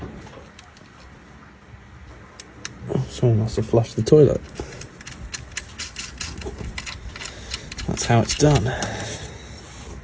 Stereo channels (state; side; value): identical; both; correlation 1.00